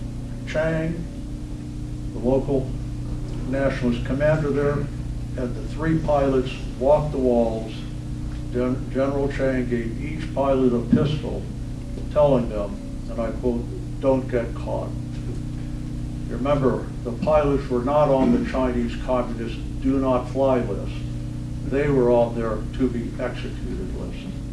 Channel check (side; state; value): both; identical; correlation 1.00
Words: Chang, the local nationalist commander there, and the 3 pilots walked the walls, General Chang gave each pilot a pistol, telling them, and I quote, "Don't get caught." Remember, the pilots were not on the Chinese Communist do not fly list. They were on their to be executed list.